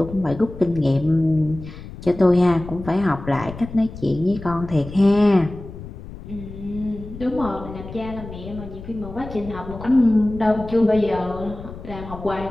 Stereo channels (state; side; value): noise; left; rumble, 13 dB below the sound